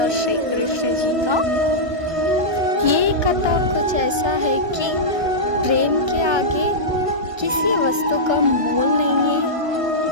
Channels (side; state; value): left; late; 1.2 ms